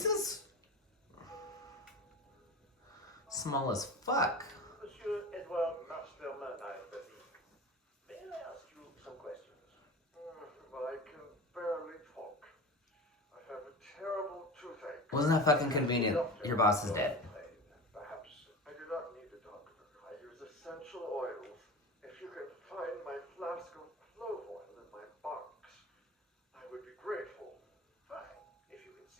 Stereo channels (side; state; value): both; normal; correlation 0.31